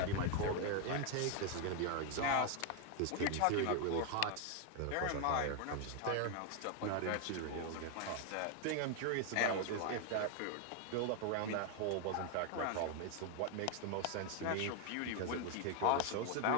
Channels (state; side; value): different; both; correlation 0.01